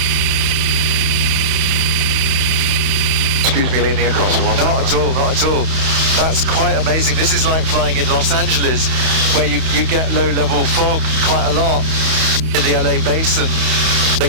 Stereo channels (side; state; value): left; late; 31 ms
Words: Excuse me leaning across for one Not at all, not at all. That's quite amazing. This is like flying in Los Angeles, where you get low-level fog quite a lot in the LA basin. They